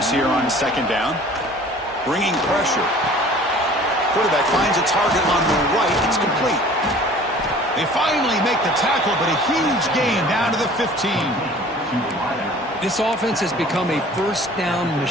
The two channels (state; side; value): normal; both; correlation 0.48